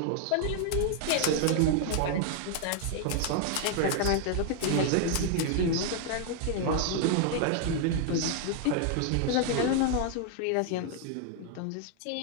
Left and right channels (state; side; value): different; both; correlation 0.00